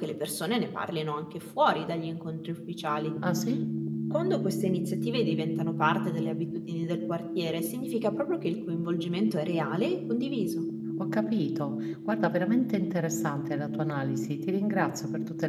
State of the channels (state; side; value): identical; both; correlation 1.00